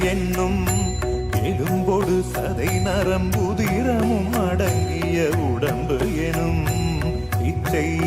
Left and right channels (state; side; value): identical; both; correlation 1.00